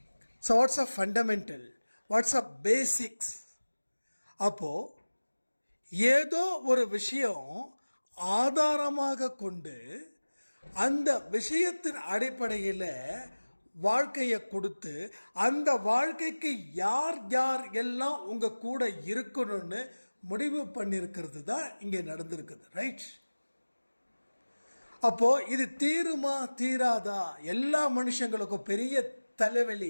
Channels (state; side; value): inverted; both; correlation -1.00